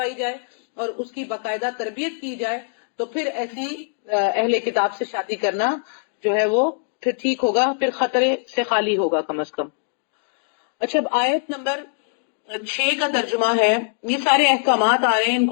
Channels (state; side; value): silent; right; digital silence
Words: جائے اور اس کی باقاعدہ تربیت کی جائے. تو پھر ایسی اہل کتاب سے شادی کرنا جو ہے وہ پھر ٹھیک ہوگا، پھر خطرے سے خالی ہوگا کم از کم. اچھا، اب آیت نمبر 6 کا ترجمہ ہے. یہ سارے احکامات آ رہے ہیں، ان